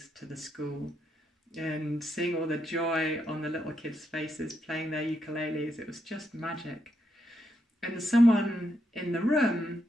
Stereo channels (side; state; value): both; normal; correlation 0.80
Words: to the school. And seeing all the joy on the little kids' faces playing their ukuleles, it was just magic. And someone in the room